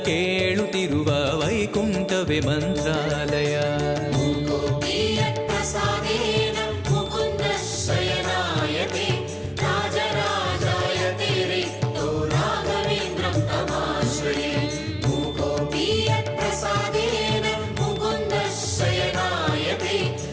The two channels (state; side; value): identical; both; correlation 1.00